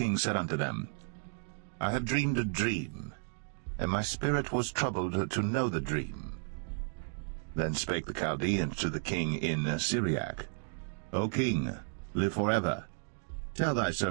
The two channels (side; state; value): left; silent; 55 dB below the other